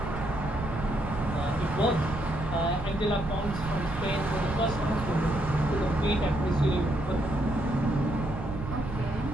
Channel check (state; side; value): noise; right; rumble, 8 dB below the sound